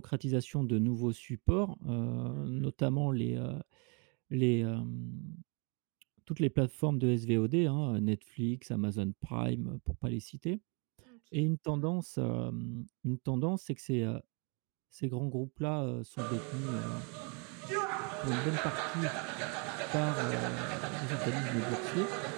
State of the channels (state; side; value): quieter; left; 34.4 dB